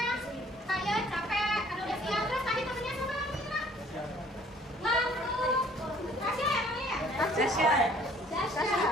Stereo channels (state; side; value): normal; both; correlation 0.57